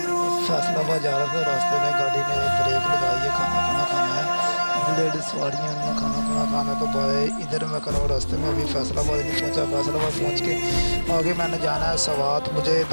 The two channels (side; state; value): both; inverted; correlation -1.00